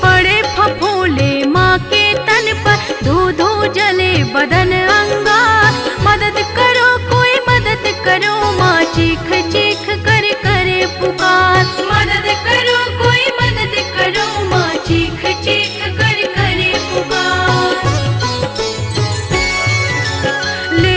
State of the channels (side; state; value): both; identical; correlation 1.00